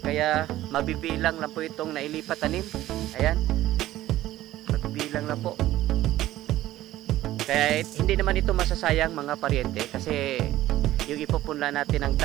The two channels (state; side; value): quieter; left; 14.9 dB